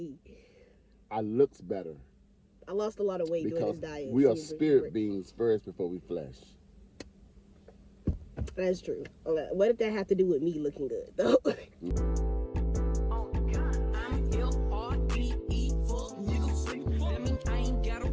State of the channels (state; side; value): identical; both; correlation 1.00